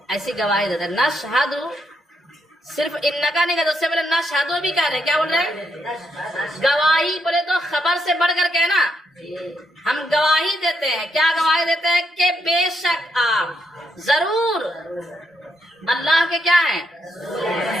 ایسی گواہی دیتے ہیں. نشہد صرف انکا نہیں کہتے، اس سے پہلے نشہدو بھی کہہ رہے ہیں. کیا بول رہے ہیں؟ گواہی بولے تو خبر سے بڑھ کر کے نا ہم گواہی دیتے ہیں. کیا گواہی دیتے ہیں؟ کہ بے شک آپ ضرور اللہ کے کیا ہیں؟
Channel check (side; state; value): both; normal; correlation 0.79